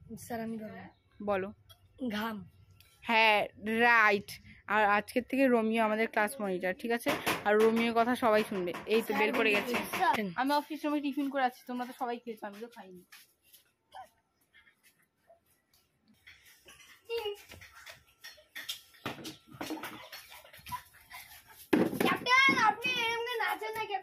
স্যার আমি বলবো বলো। ঘাম। হ্যাঁ রাইট। আর আজকের থেকে রোমিও আমাদের ক্লাস মনিটর, ঠিক আছে? আর রোমিওর কথা সবাই শুনবে। এই তো বের করে গেছে। আমি অফিস রুমে টিফিন করে আছি, তোমরা তো সবাই খেয়েছো, আমি তো খাইনি। ক্যাপ্টেন আপনি এমনি নাচেন না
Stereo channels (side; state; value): both; identical; correlation 1.00